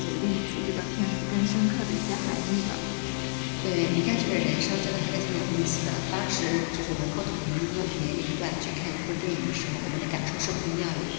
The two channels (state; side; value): silent; right; digital silence